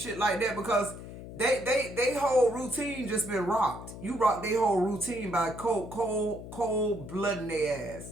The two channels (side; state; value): left; noise; hum, 12 dB below the sound